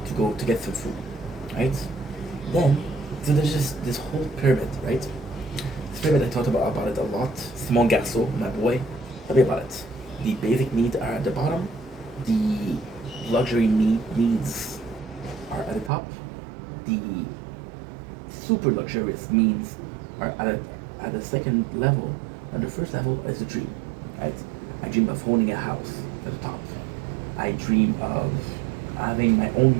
go to get some food, right? Then, so there's just this whole pyramid, right? This pyramid, I talked about it a lot. Simon Garceau, my boy, tell me about it. The basic needs are at the bottom. The luxury needs are at the top. The super luxurious needs are at the second level. And the first level is the dream, right? I dream of owning a house at the top. I dream of having my own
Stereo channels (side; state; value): left; drops out; at 15.9 s